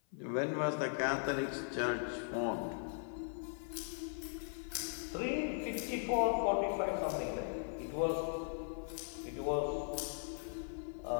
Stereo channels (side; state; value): right; silent; 52 dB below the other